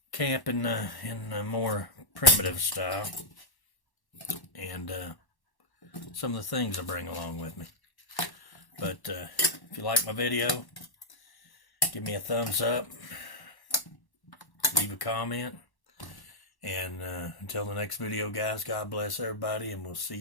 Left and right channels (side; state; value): right; late; 1.1 ms